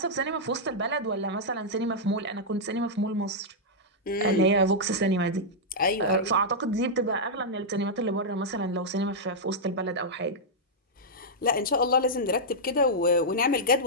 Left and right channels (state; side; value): normal; both; correlation -0.08